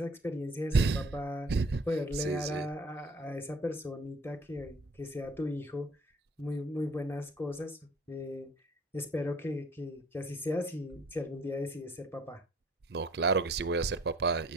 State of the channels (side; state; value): both; normal; correlation 0.54